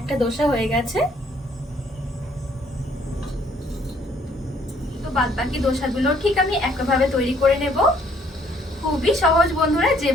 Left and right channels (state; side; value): normal; both; correlation 0.64